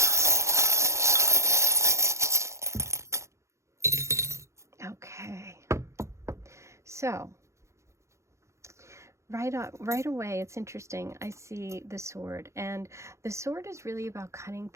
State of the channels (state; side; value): late; left; 0.14 ms